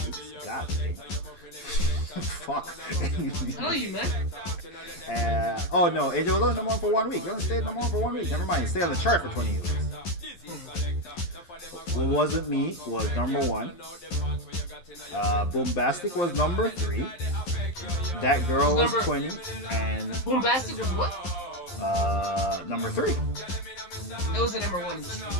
God damn. Fuck. Tell you, man. Oh no, Angel was only number 1 for 1 week. You only stayed number 1 for 1 week. Never mind. Stay on the chart for 28 weeks. What Wasn't Me was number 1. Boombastic was number 3. That Girl was 20. And Boombastic was what? Number 3. It was the number 1.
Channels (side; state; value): right; late; 12 ms